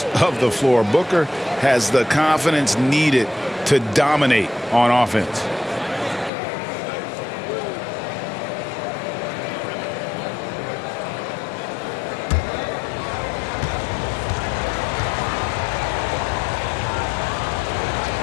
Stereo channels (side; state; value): right; drops out; at 6.3 s